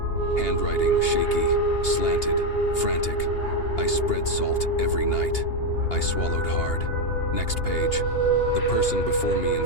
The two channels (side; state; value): right; late; 2.8 ms